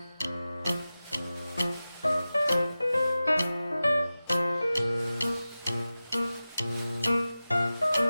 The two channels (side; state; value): both; inverted; correlation -0.95